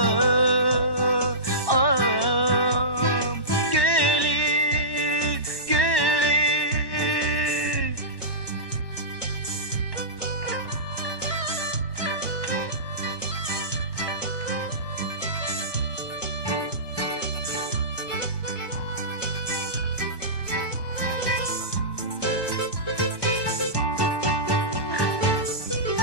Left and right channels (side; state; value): right; late; 1.1 ms